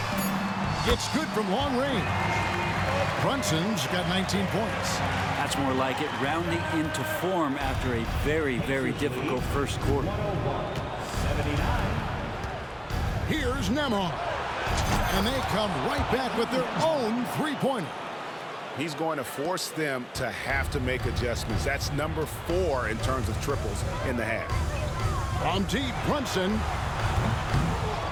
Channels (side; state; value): both; identical; correlation 1.00